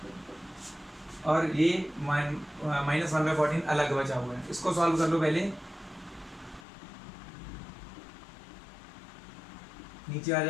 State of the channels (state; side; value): drops out; right; at 6.7 s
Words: और ये -1/14 अलग बचा हुआ है। इसको सॉल्व कर लो पहले, नीचे आ